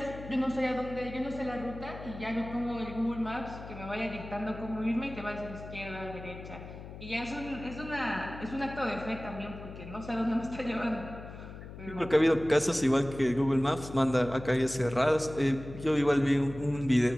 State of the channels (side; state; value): left; noise; hum, 12 dB below the sound